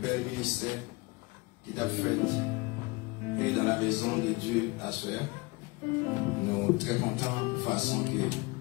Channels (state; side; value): quieter; right; 25.0 dB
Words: ministère qui t'a fait et dans la maison de Dieu à soi. Nous sommes très contents de la façon que